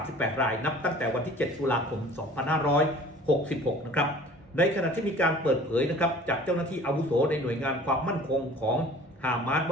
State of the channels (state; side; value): normal; both; correlation 0.47